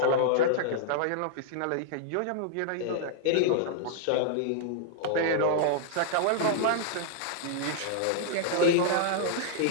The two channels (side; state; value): both; different; correlation -0.01